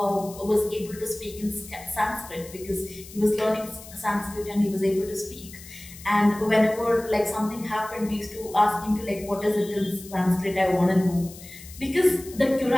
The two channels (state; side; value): noise; left; hiss, 17 dB below the sound